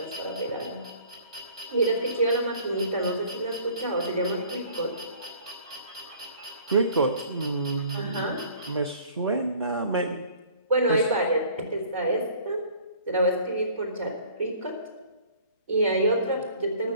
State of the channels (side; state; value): both; inverted; correlation -0.52